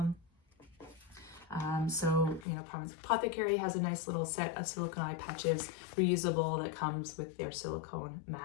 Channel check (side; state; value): right; drops out; at 2.5 s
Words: So, you know, Apothecary has a nice little set of silicone eye patches, reusable, that comes with their silicone